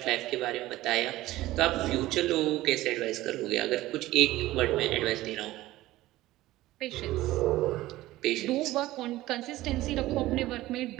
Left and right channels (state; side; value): quieter; left; 16.7 dB